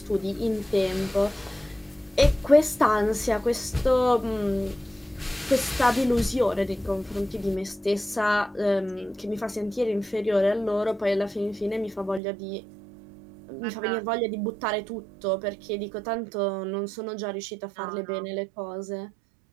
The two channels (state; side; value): drops out; left; at 12.2 s